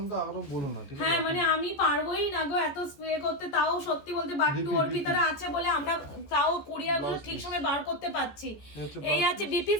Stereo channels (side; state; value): right; late; 14 ms